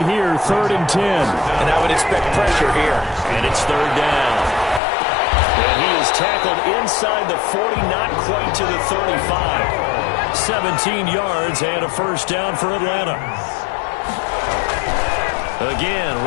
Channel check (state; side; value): drops out; right; at 4.8 s